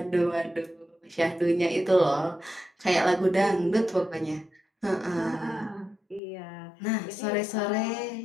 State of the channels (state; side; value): drops out; right; at 6.2 s